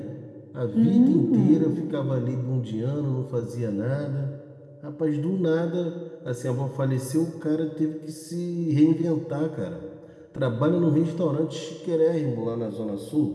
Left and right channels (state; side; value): identical; both; correlation 1.00